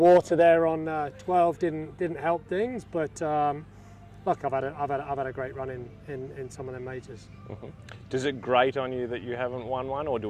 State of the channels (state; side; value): identical; both; correlation 1.00